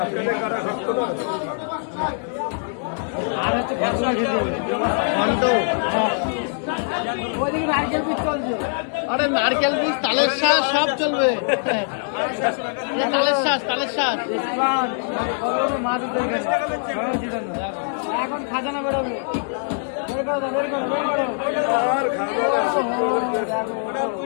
আর হচ্ছে নারকেল পিস চলছে। আরে নারকেল পিস, তালের শাঁস সব চলবে, তালের শাঁস, তালের শাঁস মাছ এখন খাজানা বেরোবে।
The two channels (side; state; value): right; silent; digital silence